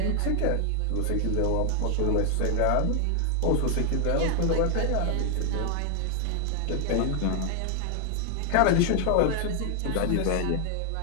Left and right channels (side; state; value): both; different; correlation 0.00